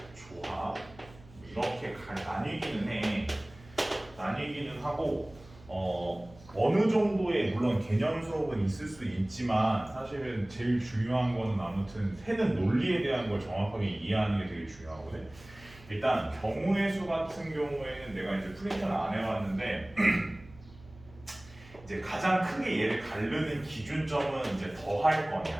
조합 이렇게 나뉘기는 하고 어느 정도의 물론 개념 수업은 있을 수 있지만 사실은 제일 중요한 거는 아무튼 세는 논리에 대한 걸 정확하게 이해하는 게 되게 중요하거든. 일단 경우의 수 같은 경우에는 내가 이제 프린트는 안 해봤는데 이제 가장 크게 얘를 가르는 기준점은 이제 더할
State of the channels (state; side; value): noise; right; hum, 22 dB below the sound